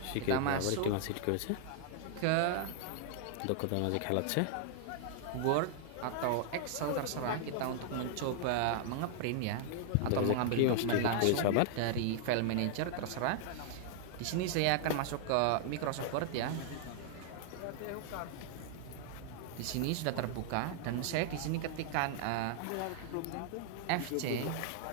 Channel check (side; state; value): both; different; correlation 0.00